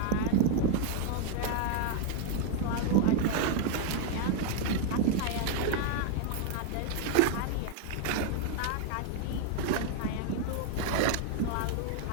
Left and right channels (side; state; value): both; different; correlation 0.00